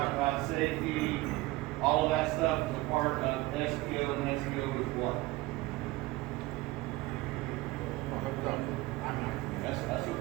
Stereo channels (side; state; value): left; quieter; 19.8 dB